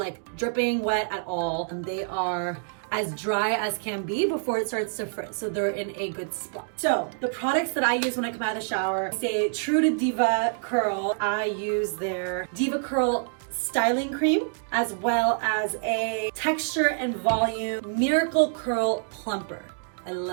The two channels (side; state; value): left; silent; digital silence